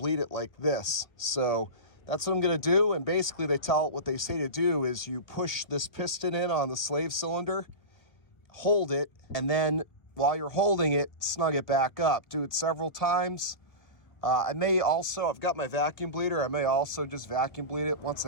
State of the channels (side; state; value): right; late; 1.8 ms